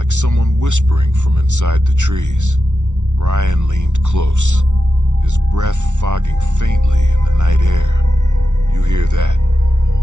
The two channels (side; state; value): left; late; 0.85 ms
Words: someone whispering from inside the trees. Brian leaned close, his breath fogging faintly in the night air. You hear that?